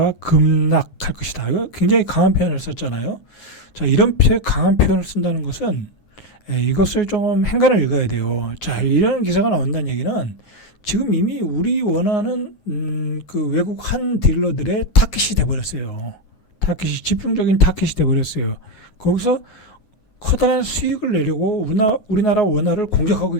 급락할 것이다. 이거 굉장히 강한 표현을 썼잖아요. 자, 이런 강한 표현을 쓴다는 것은 이것을 좀 행간을 읽어야 돼요. 자, 이런 기사가 나온다는 얘기는 지금 이미 우리 원화는 그 외국 한 딜러들의 타깃이 돼버렸어요. 집중적인 타깃이 돼버렸어요. 거기서 커다란 수익을 내려고 우리나라 원화를 공격하고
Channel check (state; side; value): late; right; 9.5 ms